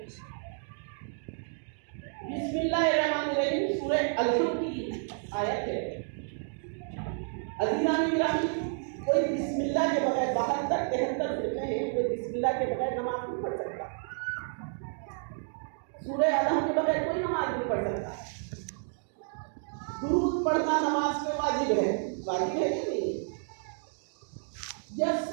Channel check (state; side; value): silent; left; digital silence